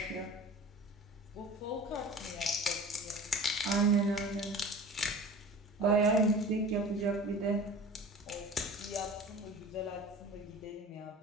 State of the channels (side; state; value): both; normal; correlation 0.39